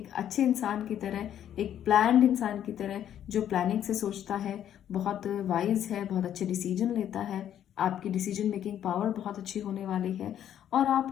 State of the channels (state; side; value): quieter; right; 10.4 dB